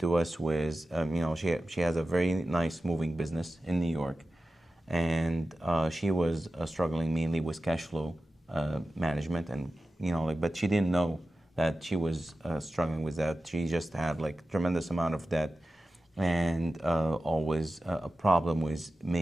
us with, she has a very nice moving business in New York, and she was struggling mainly with cash flow management, and but she didn't know that she was struggling with that. She just had tremendous amount of debt, and always a problem with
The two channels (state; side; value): normal; both; correlation 0.94